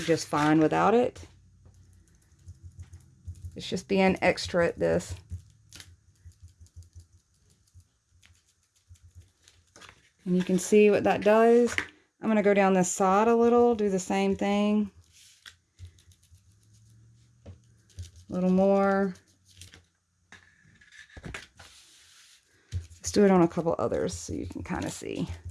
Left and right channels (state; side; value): identical; both; correlation 1.00